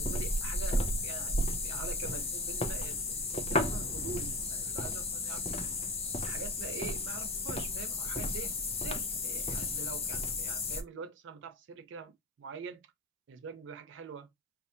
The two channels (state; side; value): normal; both; correlation 0.29